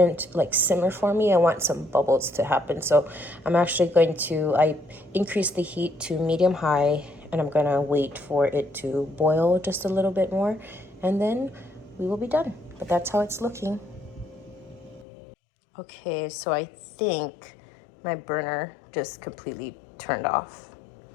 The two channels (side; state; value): right; drops out; at 15.1 s